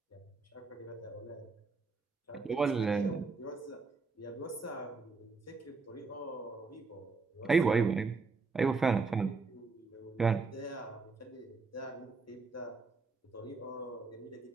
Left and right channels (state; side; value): quieter; left; 4.4 dB